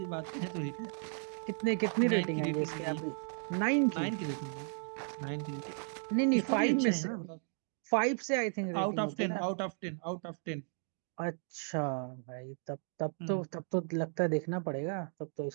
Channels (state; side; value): silent; left; 54 dB below the other